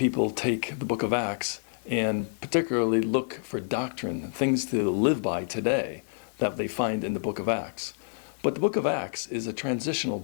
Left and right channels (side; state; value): right; silent; digital silence